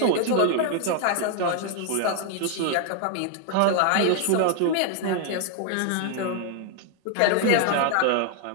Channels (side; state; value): both; different; correlation 0.00